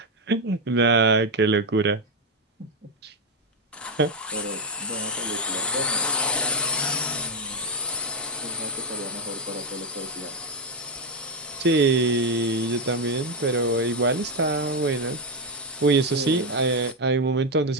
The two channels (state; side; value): normal; both; correlation 0.05